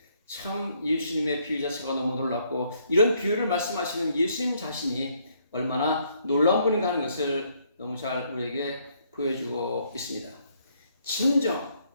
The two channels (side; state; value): both; inverted; correlation -0.68